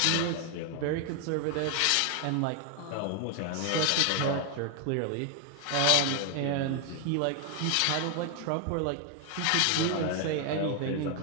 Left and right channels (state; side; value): different; both; correlation 0.00